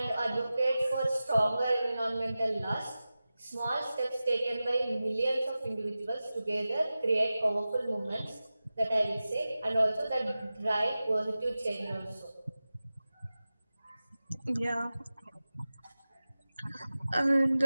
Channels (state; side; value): inverted; both; correlation -0.95